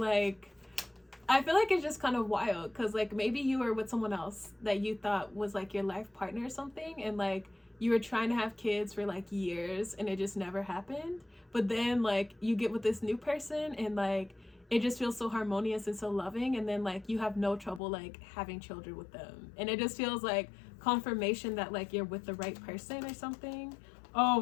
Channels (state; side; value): drops out; right; at 17.8 s